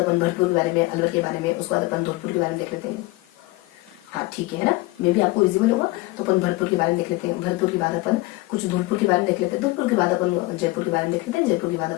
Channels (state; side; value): quieter; right; 21.1 dB